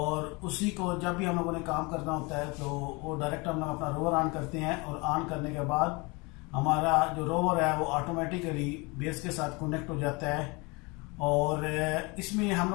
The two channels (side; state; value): right; quieter; 27.2 dB